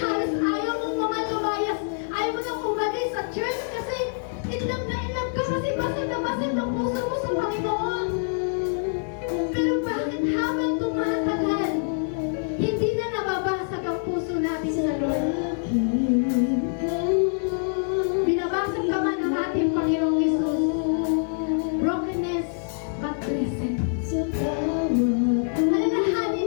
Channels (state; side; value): silent; right; 61 dB below the other